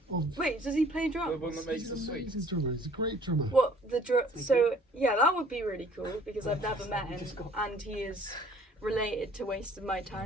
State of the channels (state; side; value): normal; both; correlation 0.55